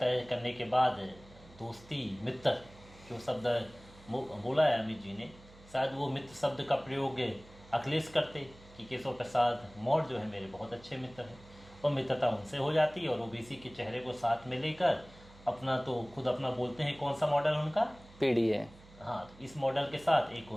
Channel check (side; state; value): right; noise; hum, 22 dB below the sound